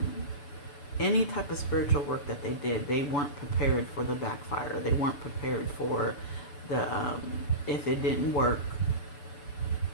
any type of spiritual work that they did, they weren't prepared for the backfire. They weren't prepared for the, if it didn't work,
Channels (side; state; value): right; late; 6.9 ms